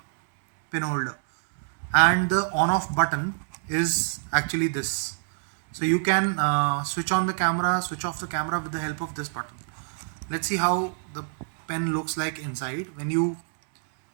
pen holder, and the on-off button is actually this. So you can switch on the camera, switch off the camera with the help of this button. Let's see how the pen looks like inside. When you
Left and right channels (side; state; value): left; silent; 61 dB below the other